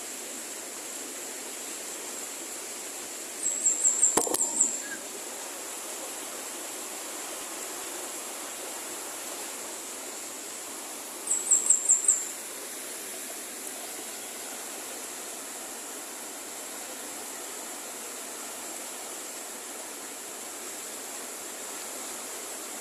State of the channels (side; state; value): both; identical; correlation 1.00